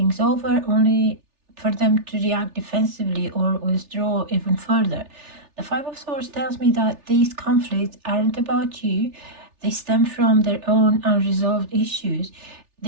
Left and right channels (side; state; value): left; late; 3.4 ms